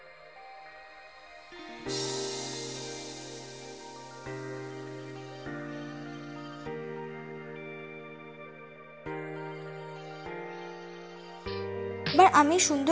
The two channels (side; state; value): both; identical; correlation 1.00